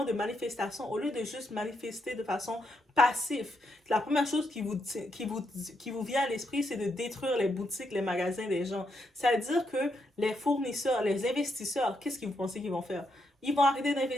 de manifestation, au lieu de juste manifester de façon passive, la première chose qui vous vient à l'esprit, c'est de détruire les boutiques, les magasins des gens. C'est-à-dire que les fournisseurs, les investisseurs, qu'est-ce que vous pensez qu'ils vont faire? Ils vont arrêter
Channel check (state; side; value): normal; both; correlation 0.80